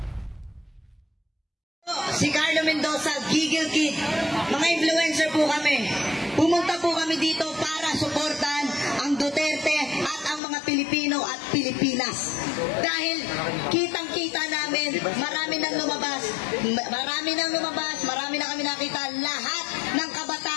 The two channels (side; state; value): right; drops out; at 10.4 s